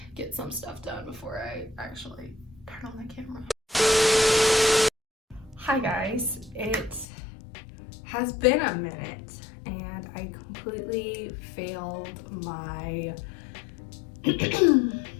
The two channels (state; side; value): drops out; right; at 7.1 s